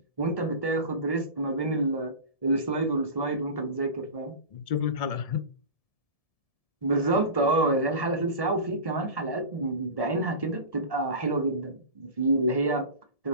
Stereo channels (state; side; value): late; right; 1.7 ms